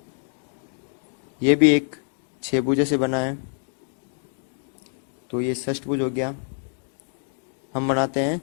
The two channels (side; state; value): right; silent; digital silence